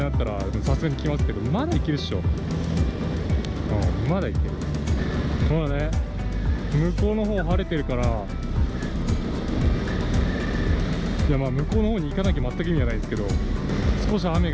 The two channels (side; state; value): both; identical; correlation 1.00